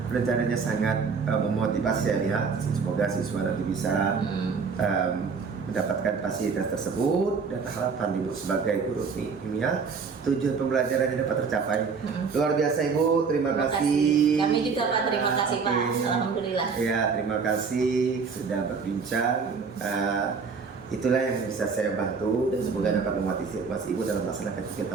Rencananya sangat memotivasi saya lihat. Semoga siswa nanti bisa mendapatkan fasilitas tersebut, dan harapan Ibu sebagai guru kimia tujuan pembelajarannya dapat tercapai. Luar biasa Ibu, terima kasih. Kami juga Pak, terima kasih Pak. Oke. Alhamdulillah. Ya, terima kasih sudah berbincang. Itulah yang bisa saya bantu, dan semoga dapat memotivasi Ibu dalam melaksanakan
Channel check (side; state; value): left; quieter; 5.3 dB